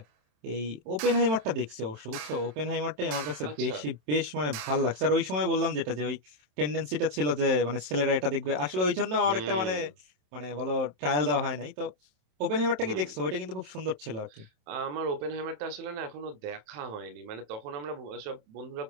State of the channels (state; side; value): late; left; 27 ms